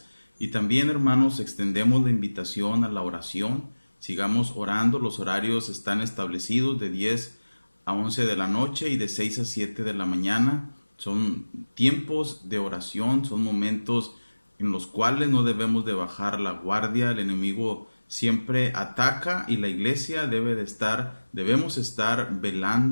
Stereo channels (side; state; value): both; inverted; correlation -1.00